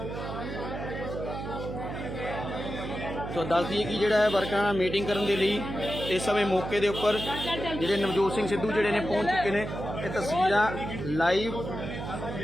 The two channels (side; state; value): right; noise; hum, 7 dB below the sound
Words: तो दस दिए कि जोड़ा है वर्कर नाल मीटिंग करने के लिए इस समय मौके के उपर जो नवजोत सिंह सिद्धू जोड़े ने पहुंच चुके हैं। ये तस्वीर लाइव